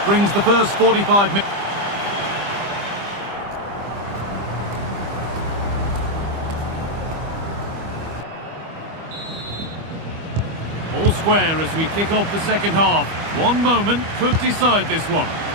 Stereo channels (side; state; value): left; late; 25 ms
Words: brings the first 45 minutes. All square as we kick off the second half. One moment could decide this one.